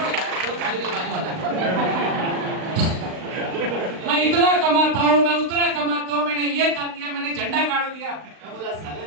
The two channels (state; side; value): late; left; 38 ms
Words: यार, जो गाली में बात होता है। मैं इतना कमाता हूँ, मैं उतना कमाता हूँ, मैंने ये कर दिया, मैंने झंडा गाड़ दिया। मैं बोला साले